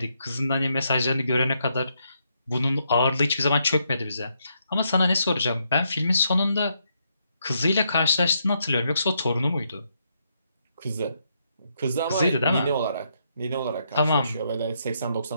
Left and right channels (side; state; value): both; inverted; correlation -0.77